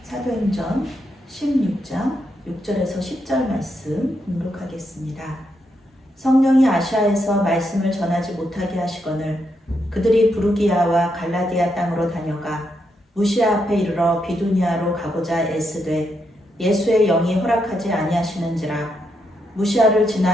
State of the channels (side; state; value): both; normal; correlation 0.81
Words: 사도행전 16장 6절에서 10절 말씀 공독하겠습니다. 성령이 아시아에서 말씀을 전하지 못하게 하시거늘 그들이 부르기아와 갈라디아 땅으로 다녀가 무시아 앞에 이르러 비두니아로 가고자 애쓰되 예수의 영이 허락하지 아니하시는지라. 무시아를